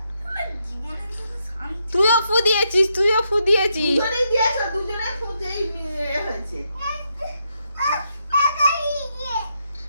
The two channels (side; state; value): both; inverted; correlation -0.80